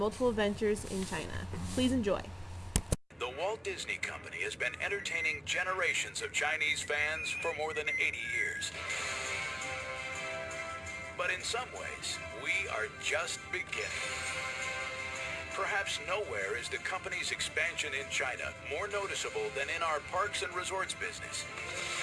ventures in China. Please enjoy. The Walt Disney Company has been entertaining generations of Chinese fans for more than 80 years. But in some ways, we are just beginning. Perhaps nowhere is the company's expansion in China more noticeable than in our parks and resorts business.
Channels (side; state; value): both; identical; correlation 1.00